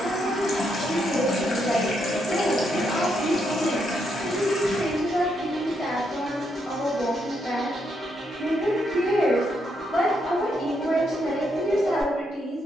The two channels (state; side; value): normal; both; correlation 0.78